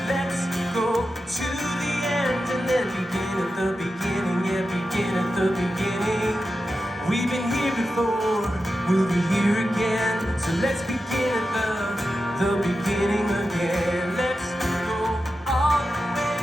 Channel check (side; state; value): both; normal; correlation 0.91